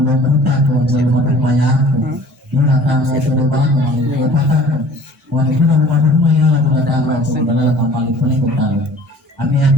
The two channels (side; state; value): both; normal; correlation 0.49